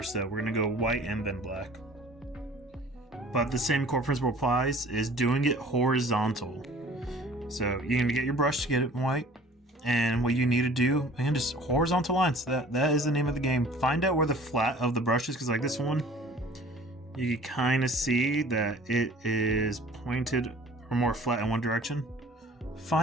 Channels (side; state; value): both; normal; correlation 0.49